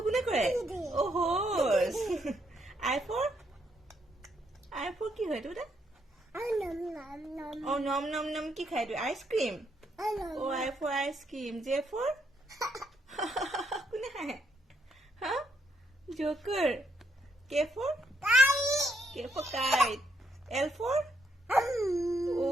কোনে কৰে? Oh, horse. I for কি হয় তোৰ? Oh, nom কি খায় তোৰ? Ice cream. Oh, I for ice cream. J for কোনে খায়? Huh? Joker. K for kite. L for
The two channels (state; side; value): normal; both; correlation 0.76